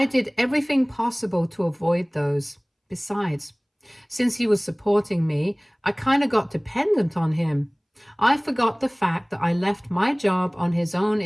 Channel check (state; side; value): identical; both; correlation 1.00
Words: did everything possible to avoid those. Besides, since he was supporting me, I kind of got dependent on him. I forgot the fact that I left my job on his own